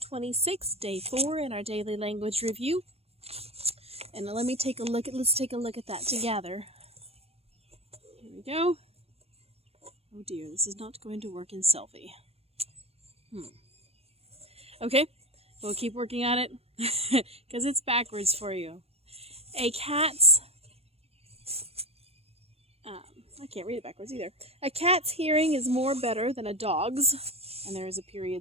26, day 4 in our daily language review. And let's take a look at that together. Here we go. Oh dear, this is not going to work in selfie. Okay, we'll keep working on it because it's backwards for you. I can't read it backwards either. A cat's hearing is more better than a dog's. And there is a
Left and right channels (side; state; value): left; late; 0.29 ms